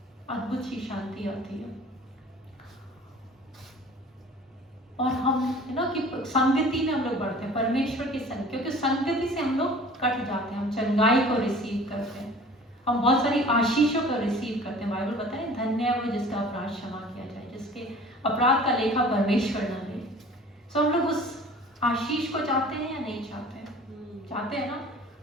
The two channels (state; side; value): normal; both; correlation 0.46